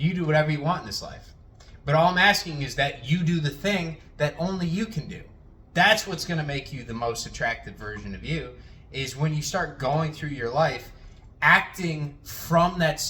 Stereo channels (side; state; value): both; identical; correlation 1.00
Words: do whatever you want in this life. But all I'm asking is that you do the thing that only you can do. That's what's going to make you the most attractive version of you, is when you start going through your life acting from that